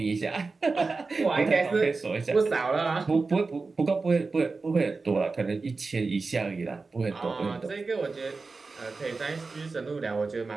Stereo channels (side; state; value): left; quieter; 4.0 dB